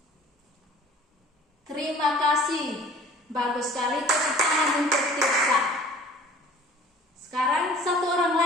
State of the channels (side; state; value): both; normal; correlation 0.47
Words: Terima kasih. Bagus sekali, tepuk tangan untuk Tirsa. Sekarang 1 orang